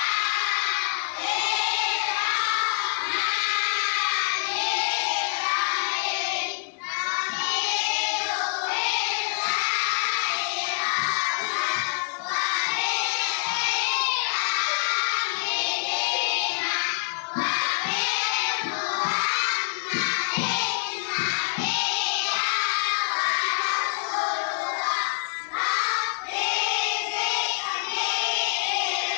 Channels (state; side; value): silent; right; digital silence